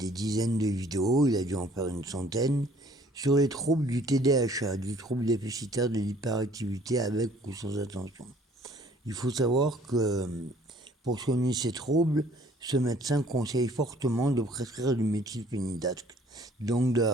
dizaines de vidéos, il a dû en faire une centaine, sur les troubles du TDAH, du trouble déficitaire de l'hyperactivité avec ou sans attention. Il faut savoir que pour soigner ces troubles, ce médecin conseille fortement de prescrire du méthylphénidate, donc de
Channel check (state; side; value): normal; both; correlation 0.57